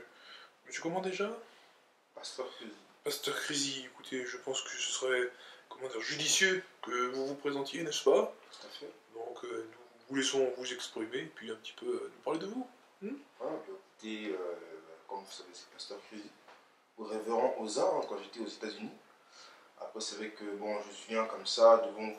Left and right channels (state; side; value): identical; both; correlation 1.00